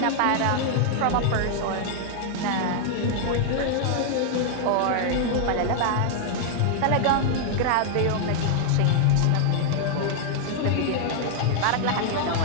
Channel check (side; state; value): both; different; correlation -0.01